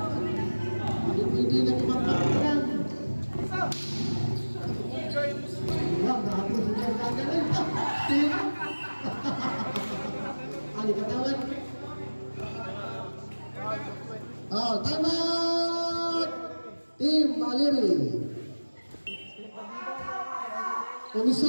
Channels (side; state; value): both; inverted; correlation -1.00